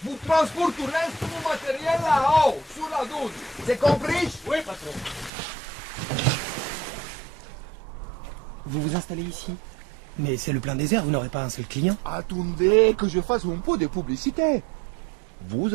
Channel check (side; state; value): left; drops out; at 5.3 s